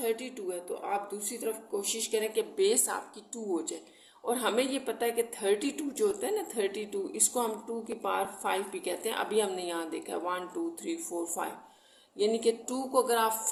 है, तो आप दूसरी तरफ कोशिश करें कि बेस आपकी 2 हो जाए। और हमें ये पता है कि 32 जो होता है ना 32, इसको हम 2 की पावर 5 भी कहते हैं। अभी हमने यहाँ देखा है 1 2 3 4 5, यानी कि 2 को अगर आप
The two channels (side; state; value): both; identical; correlation 1.00